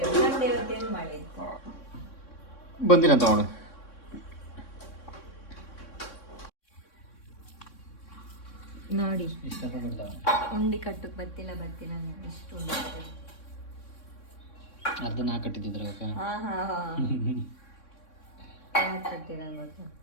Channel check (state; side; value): late; right; 3.6 ms